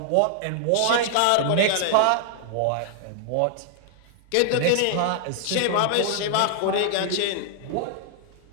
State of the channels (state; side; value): different; both; correlation -0.01